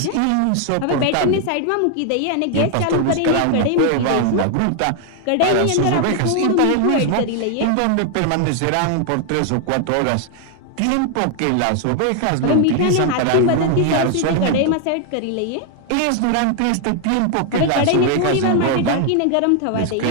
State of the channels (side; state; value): both; different; correlation 0.00